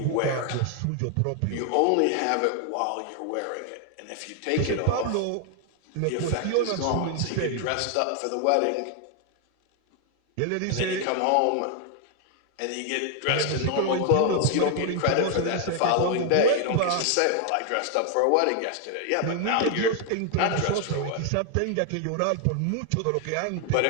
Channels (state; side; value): different; both; correlation 0.00